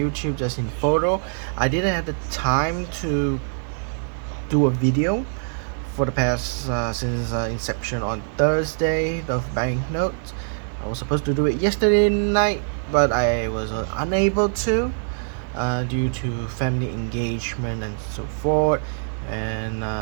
just in photo. I didn't have the time to do a video for the past since inception on Thursday of banknotes. I was supposed to do it yesterday night, but I was unable to due to family engagement and so forth. And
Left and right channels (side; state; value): left; silent; digital silence